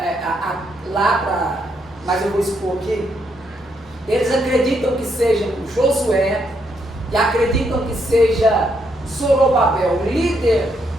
mas eu vou expor aqui. Eles acreditam que seja Josué e acreditam que seja Zorobabel, o líder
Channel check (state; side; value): normal; both; correlation 0.76